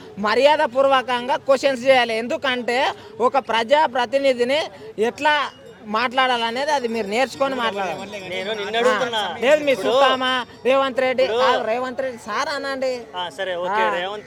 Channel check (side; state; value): both; identical; correlation 1.00